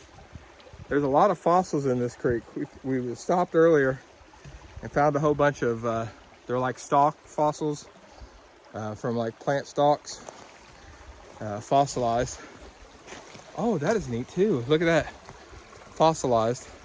There's a lot of fossils in this creek. We stopped earlier and found a whole bunch of, they're like stalk fossils from like plant stalks, fossilized. Oh, that is neat too. Look at that, fossilized.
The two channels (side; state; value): both; identical; correlation 1.00